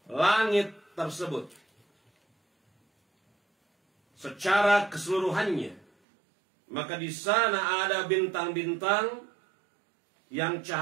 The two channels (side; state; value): left; drops out; at 5.9 s